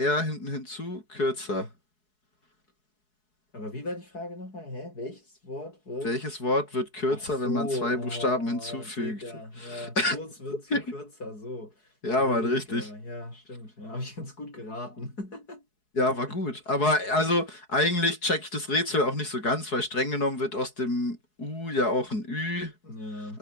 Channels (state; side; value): late; right; 4.7 ms